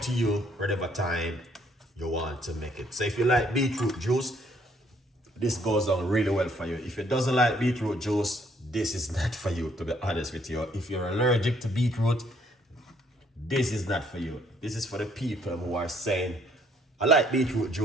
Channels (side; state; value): both; normal; correlation 0.66